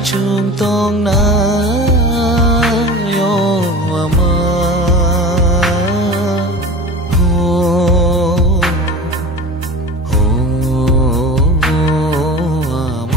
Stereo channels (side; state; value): both; normal; correlation 0.35